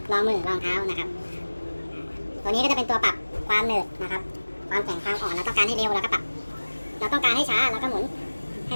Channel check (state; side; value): inverted; both; correlation -1.00